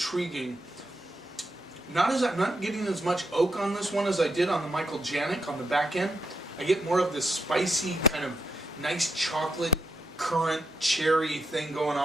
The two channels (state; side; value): normal; both; correlation 0.80